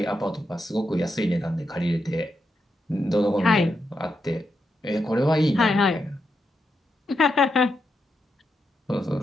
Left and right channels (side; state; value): both; normal; correlation 0.84